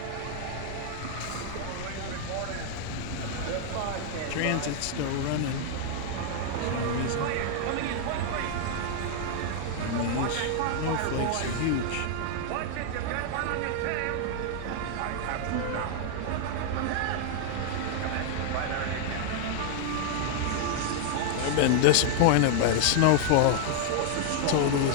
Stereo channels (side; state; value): both; different; correlation -0.01